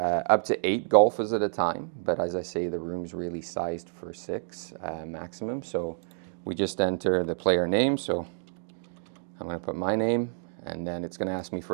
to 8 golfers at a time, but as I say, the room's really sized for 6 maximum. So we just enter the player name. So I'm going to put my name, and then it's going to ask me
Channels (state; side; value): silent; left; digital silence